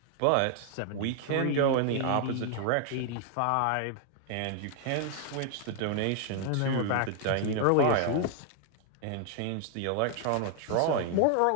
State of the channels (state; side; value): different; both; correlation 0.00